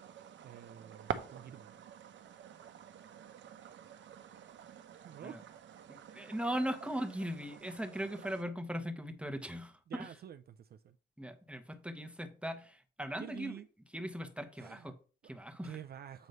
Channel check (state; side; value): normal; both; correlation 0.76